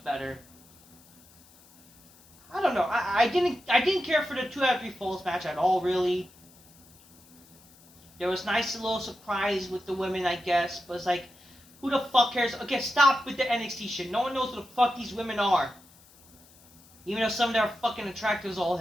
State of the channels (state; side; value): noise; left; hiss, 26 dB below the sound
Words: better. I don't know. I didn't care for the 2 out of 3 falls match at all, really. There was nice little surprise with the women, I guess, but it's like, who the fuck cares? Okay, stop with the NXT shit. No one knows who the fuck these women are. Even though some of them are fucking attractive as all